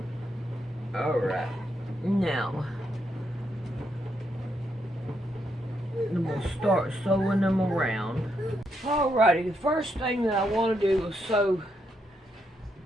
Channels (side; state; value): both; normal; correlation 0.79